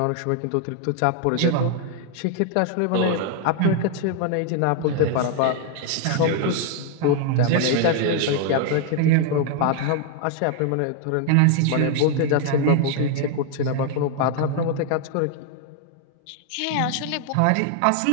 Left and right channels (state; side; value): different; both; correlation 0.00